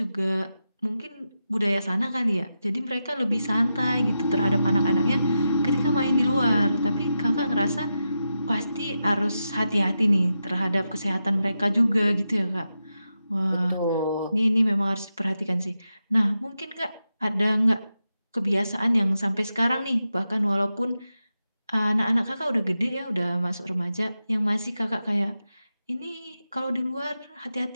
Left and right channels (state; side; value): inverted; both; correlation -0.89